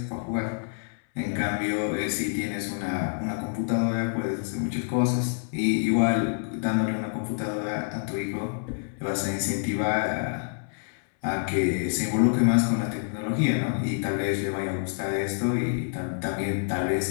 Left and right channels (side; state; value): right; silent; 60 dB below the other